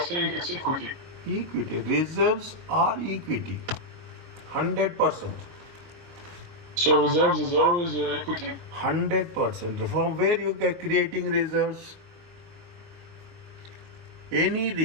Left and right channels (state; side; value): late; left; 23 ms